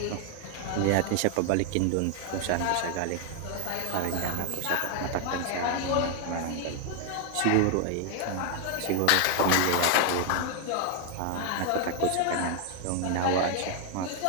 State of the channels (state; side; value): different; both; correlation 0.00